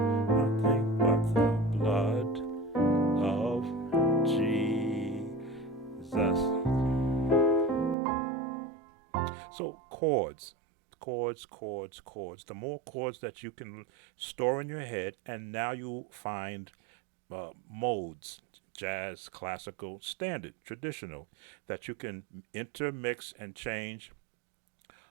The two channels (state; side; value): drops out; left; at 8.0 s